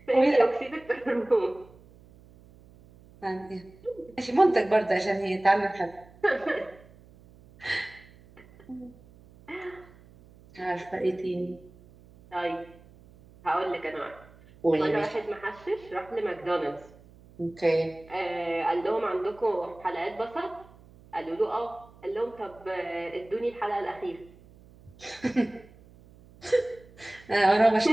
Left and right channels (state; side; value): noise; right; hum, 24 dB below the sound